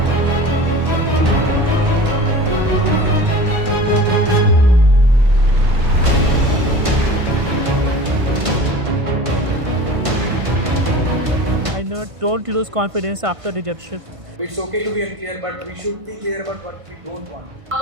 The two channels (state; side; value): late; left; 1.5 ms